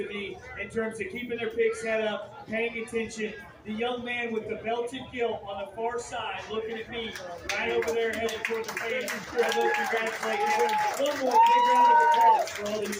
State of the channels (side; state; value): both; identical; correlation 1.00